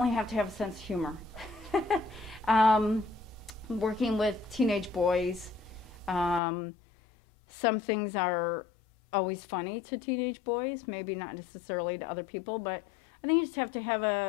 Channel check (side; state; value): right; drops out; at 6.4 s